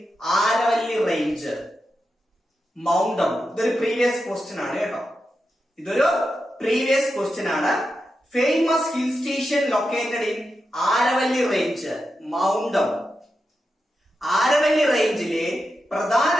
Aravalli range. Mount Abu. ഇതൊരു previous question ആണ് കേട്ടോ. ഇതൊരു previous question ആണ്. Famous hill station located in Aravalli range, Mount Abu. Aravalli റേഞ്ചിലെ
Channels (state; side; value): normal; both; correlation 0.88